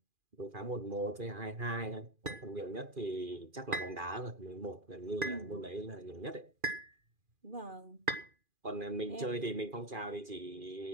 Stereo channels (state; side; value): late; left; 2.4 ms